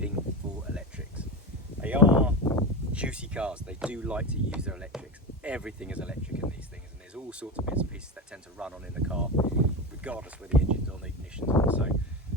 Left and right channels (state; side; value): normal; both; correlation 0.22